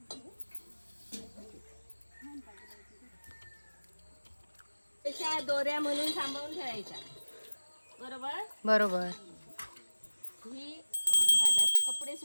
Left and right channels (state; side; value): inverted; both; correlation -1.00